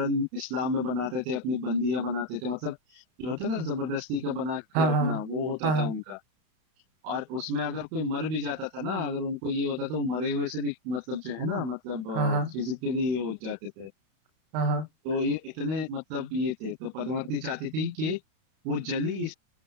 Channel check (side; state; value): left; late; 32 ms